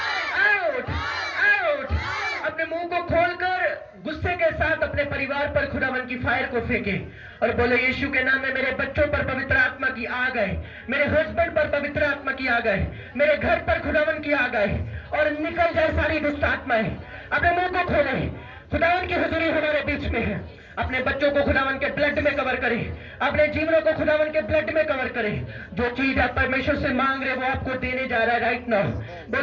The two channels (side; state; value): both; identical; correlation 1.00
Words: out out. अपने मुंह को खोलकर गुस्से के साथ अपने परिवार पर खुदावन की फायर को फेंके और बोले यीशु के नाम में मेरे बच्चों पर पवित्र आत्मा की आ गए, मेरे हस्बैंड पर पवित्र आत्मा की आ गए, मेरे घर पर खुदावन की आ गए और निकल जाए सारी दुष्ट आत्माएं। अपने मुंह को खोले, खुदावन की हुजूरी हमारे बीच में है। अपने बच्चों को खुदावन के ब्लड में कवर करें, अपने जीवनों को खुदावन के ब्लड में कवर करें। जो चीज आप परमेश्वर से मांग रहे वो आपको देने जा रहा है राइट नाउ।